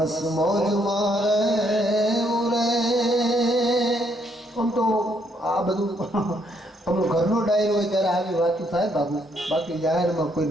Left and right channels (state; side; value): normal; both; correlation 0.71